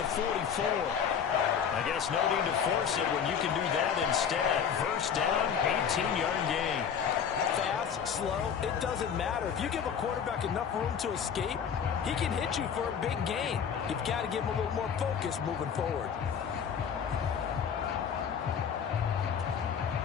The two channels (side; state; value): right; quieter; 7.5 dB